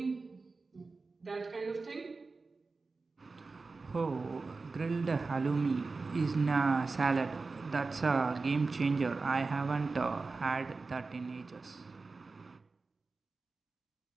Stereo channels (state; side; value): quieter; left; 4.0 dB